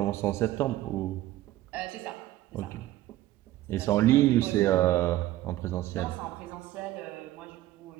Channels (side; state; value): left; quieter; 15.3 dB